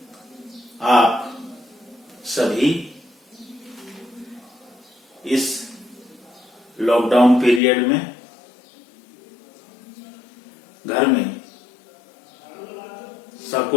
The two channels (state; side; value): drops out; right; at 7.6 s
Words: आप सभी इस लॉकडाउन पीरियड में घर में